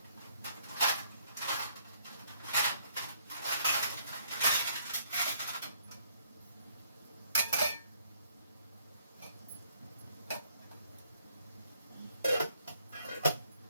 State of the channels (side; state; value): both; inverted; correlation -0.67